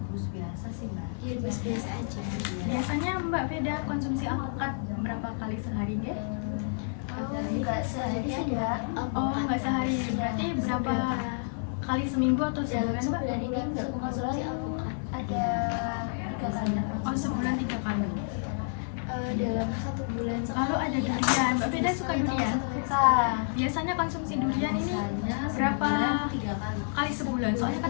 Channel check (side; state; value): right; silent; 58 dB below the other